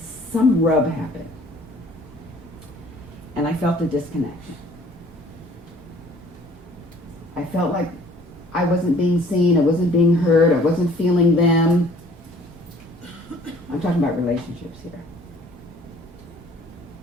some rub happened. And I felt a disconnection. I felt like I wasn't being seen, I wasn't being heard, I wasn't feeling them. I'm talking about relationships here.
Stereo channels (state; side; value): normal; both; correlation 0.54